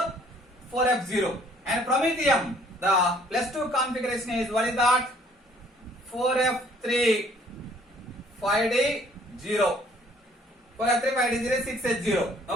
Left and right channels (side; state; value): both; normal; correlation 0.59